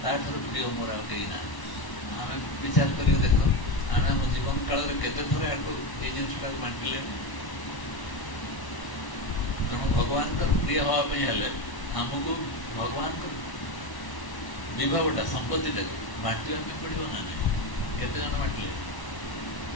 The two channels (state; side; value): late; right; 1.1 ms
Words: ତାଠାରୁ ପ୍ରିୟ ମୋର ଆଉ କେହି ନାହିଁ। ଆମେ ବିଚାର କରିକି ଦେଖ, ଆମେ ଆମ ଜୀବନ କାଳରେ କେତେ ଥର ଆକୁ ଏଇ ଜିନିଷଟାକୁ ବାଣ୍ଟିଲେ। ତେଣୁ ଭଗବାନଙ୍କର ପ୍ରିୟ ହେବା ପାଇଁ ହେଲେ ଆମକୁ ଭଗବାନଙ୍କ ବିଭାଗଟା ସମ୍ପତ୍ତିଟାକୁ ବାଣ୍ଟିବା ପାଇଁ ପଡ଼ିବ ନା ନାହିଁ? କେତେ ଜଣ ବାଣ୍ଟିଲେ?